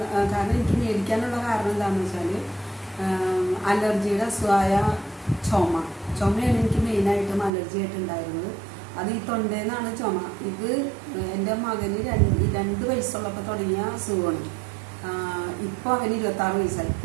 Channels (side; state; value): left; drops out; at 7.5 s